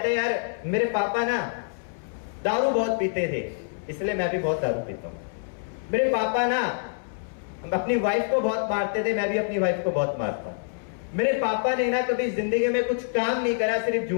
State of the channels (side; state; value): right; silent; 61 dB below the other